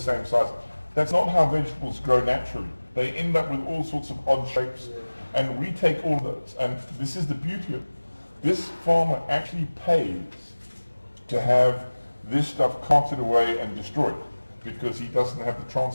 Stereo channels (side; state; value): both; inverted; correlation -1.00